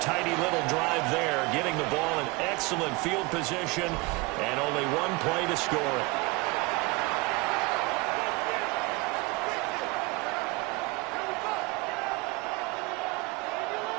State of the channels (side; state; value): left; quieter; 25.4 dB